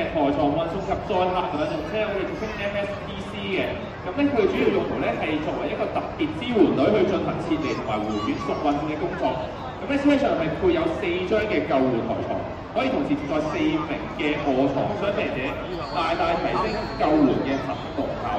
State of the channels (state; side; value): identical; both; correlation 1.00